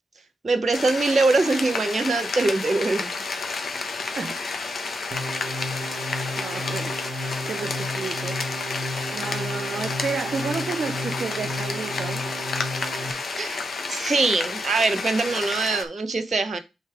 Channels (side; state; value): both; normal; correlation 0.83